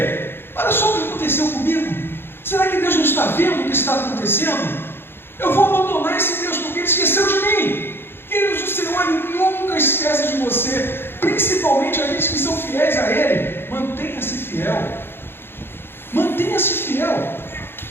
olha só o que aconteceu comigo. Será que Deus não está vendo o que está acontecendo? Eu vou abandonar esse Deus porque Ele esqueceu de mim. Queridos, o Senhor Ele nunca esquece de você. Principalmente aqueles que são fiéis a Ele. Mantenha-se fiel. Mantenha-se fiel.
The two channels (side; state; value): right; late; 0.11 ms